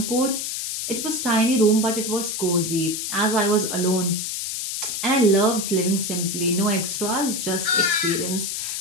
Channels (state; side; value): noise; left; hiss, 3 dB below the sound